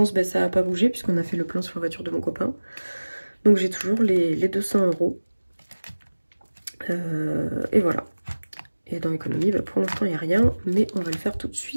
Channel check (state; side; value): inverted; both; correlation -1.00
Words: ben, ça n'a pas bougé puisqu'on a fait le plan sur la voiture de mon copain. Donc j'ai toujours les 200 €. Et voilà. Et dans l'économie, ben, pour l'instant, il n'y a rien, mais on va le faire tout de